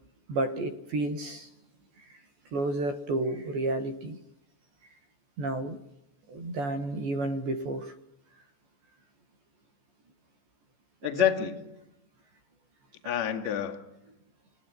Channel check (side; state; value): left; late; 14 ms